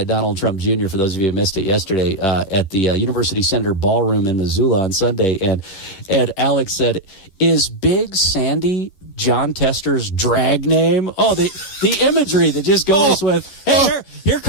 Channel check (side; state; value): right; late; 11 ms